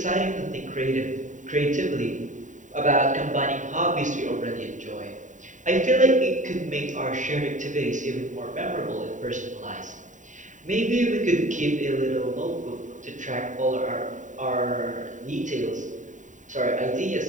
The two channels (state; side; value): late; left; 0.36 ms